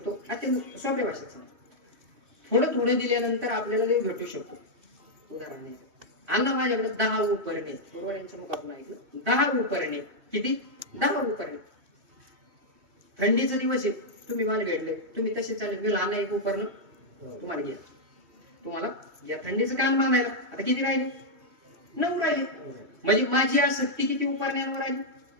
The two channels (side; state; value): left; late; 2.7 ms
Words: अत्यंत सोप्या भाषेत सांग. थोडं थोडं दिल्यानंतर आपल्याला देव भेटू शकतो. उदाहरण आहे, अण्णा माझ्याकडे 10 उपरणे. बरोबर, यांच्या मुखातून ऐकलं. 10 उपरणे. किती? 10 उपरणे. थंडीचा दिवस आहे, तुम्ही मला भेटले, तुम्ही तसे चालले, मी लहान एक उपरणं तुम्हाला घ्या. तुम्हाला या थंडीचं काम बांधायला आता किती राहिले? 9 राहिले. म्हणजे माझी आसक्ती किती उपरण्यावर राहिली?